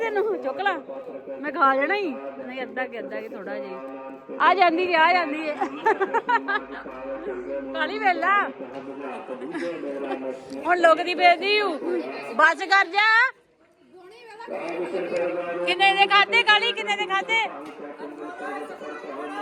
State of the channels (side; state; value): both; identical; correlation 1.00